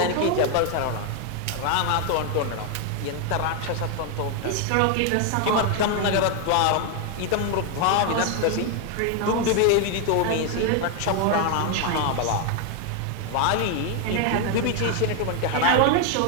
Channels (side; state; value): both; different; correlation 0.01